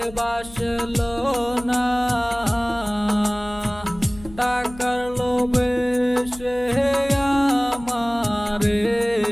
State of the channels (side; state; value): left; noise; hum, 19 dB below the sound